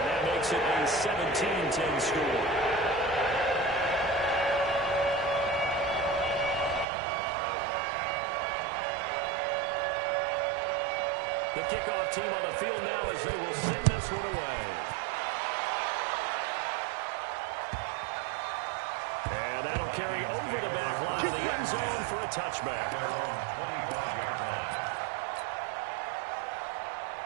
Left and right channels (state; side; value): drops out; left; at 6.9 s